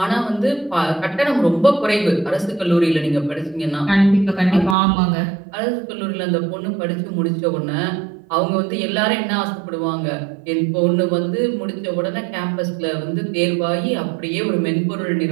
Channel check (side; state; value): left; drops out; at 4.8 s